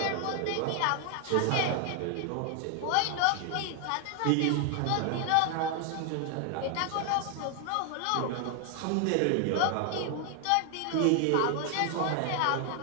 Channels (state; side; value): different; both; correlation 0.00